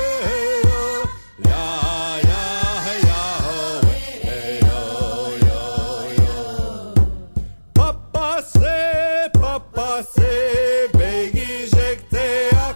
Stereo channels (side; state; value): both; inverted; correlation -1.00